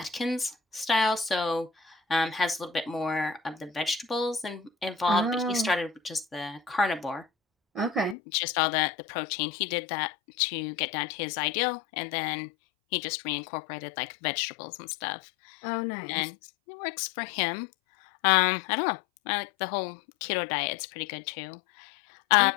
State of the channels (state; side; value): drops out; right; at 8.2 s